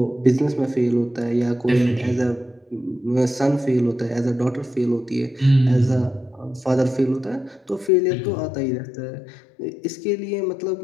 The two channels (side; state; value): right; drops out; at 7.9 s